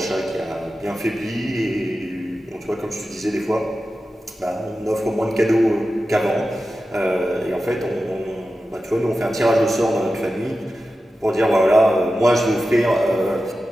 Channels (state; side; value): normal; both; correlation 0.93